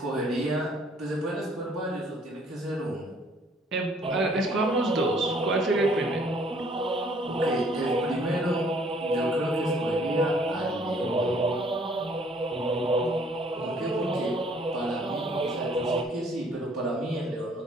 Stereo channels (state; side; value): normal; both; correlation 0.60